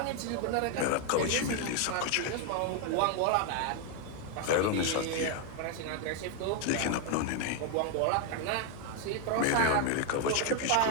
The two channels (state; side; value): different; both; correlation 0.01